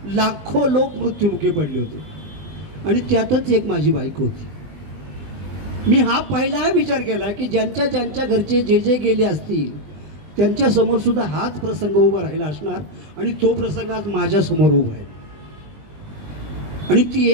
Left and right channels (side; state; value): left; late; 20 ms